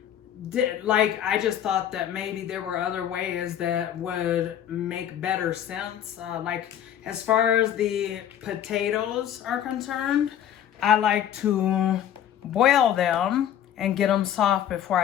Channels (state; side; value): quieter; right; 10.3 dB